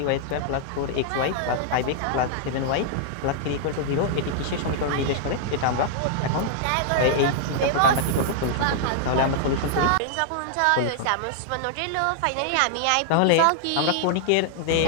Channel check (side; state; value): both; different; correlation -0.01